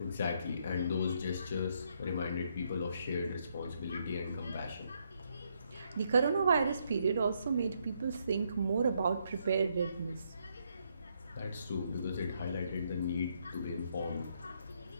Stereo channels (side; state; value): both; inverted; correlation -0.75